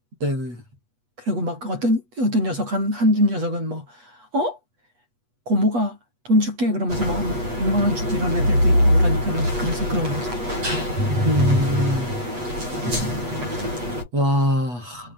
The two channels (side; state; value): left; late; 8.2 ms